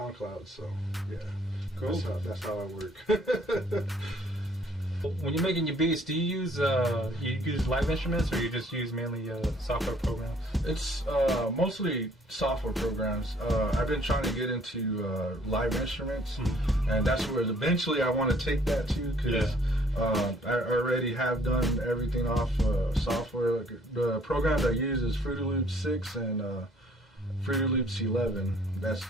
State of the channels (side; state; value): both; normal; correlation 0.60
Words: So yeah, cool. That's how I work. When you're making your beats, do you use live instruments, or you just use mainly software programs? It's mostly software programs. I've been trying to get into live instruments, and that's where eventually I want to take that to, because I already have done everything off software. The programs I use is Fruity Loops 6 and Fruity Loops 11. That's